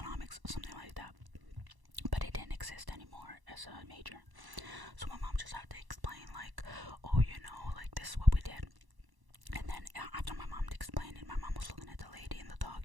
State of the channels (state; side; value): late; left; 1.0 ms